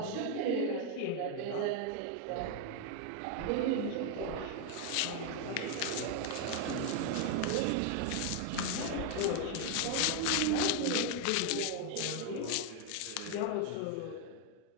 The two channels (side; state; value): both; different; correlation 0.00